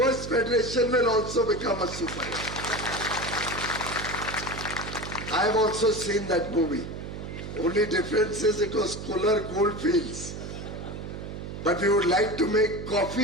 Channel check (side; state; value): right; noise; hum, 8 dB below the sound